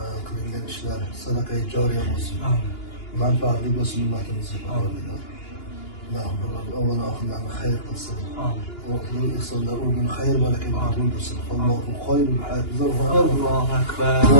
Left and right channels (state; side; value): late; right; 2.9 ms